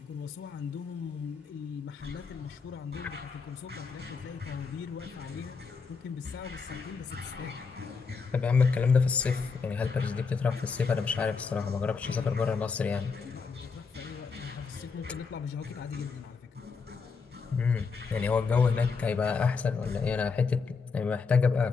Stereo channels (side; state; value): right; quieter; 5.1 dB